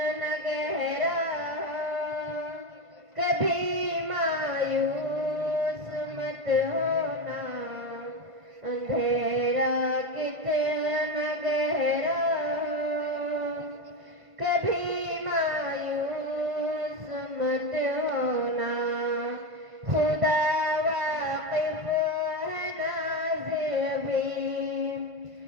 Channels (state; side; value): late; left; 1.5 ms